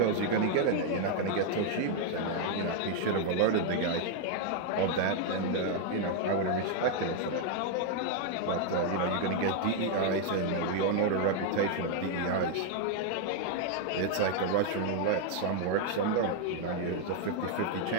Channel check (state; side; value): different; both; correlation 0.00